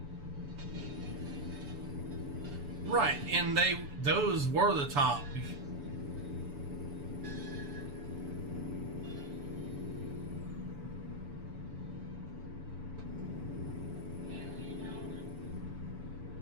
Right, and those were the top.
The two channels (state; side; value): late; left; 7.0 ms